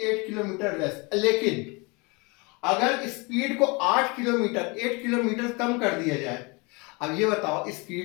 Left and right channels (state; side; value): quieter; right; 28.1 dB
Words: 8 kilometre less, लेकिन अगर स्पीड को 8 किलोमीटर कम कर दिया जाए। अब ये बताओ,